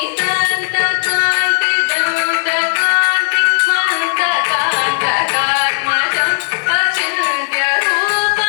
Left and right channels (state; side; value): silent; right; digital silence